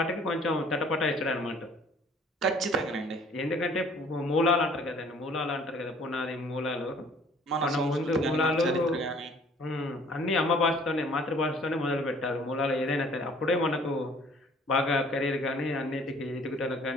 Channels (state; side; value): normal; both; correlation 0.55